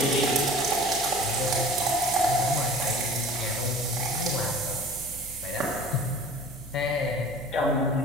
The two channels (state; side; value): normal; both; correlation 0.43